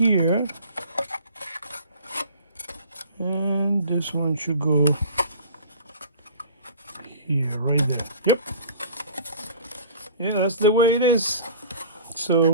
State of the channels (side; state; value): both; inverted; correlation -0.44